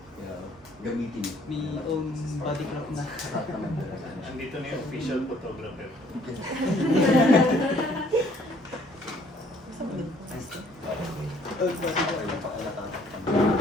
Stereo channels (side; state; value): both; normal; correlation 0.61